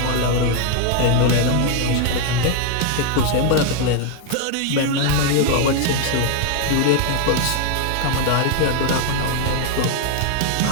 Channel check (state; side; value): different; both; correlation 0.00